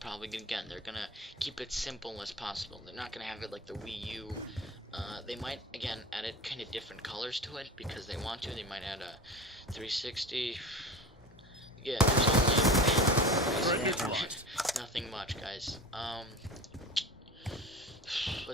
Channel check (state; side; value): normal; both; correlation 0.32